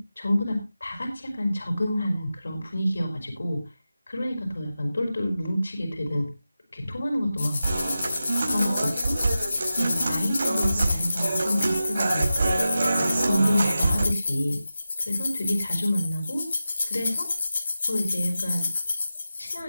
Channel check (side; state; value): both; inverted; correlation -0.93